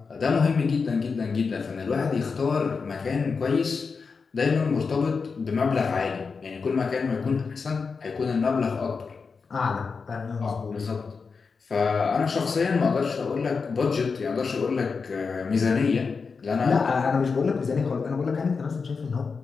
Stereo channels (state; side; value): quieter; right; 5.0 dB